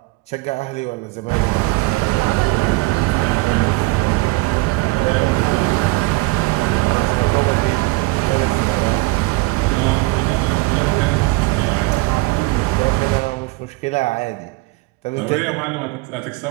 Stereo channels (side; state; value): left; quieter; 22.9 dB